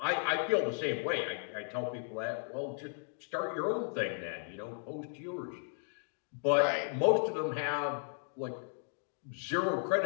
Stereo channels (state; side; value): silent; right; 54 dB below the other